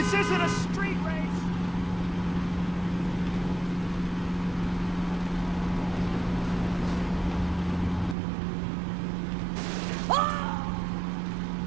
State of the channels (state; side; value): drops out; left; at 8.2 s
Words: isn't a street race.